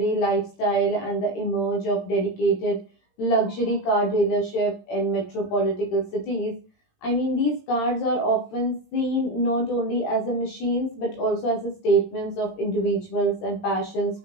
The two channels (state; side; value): late; right; 18 ms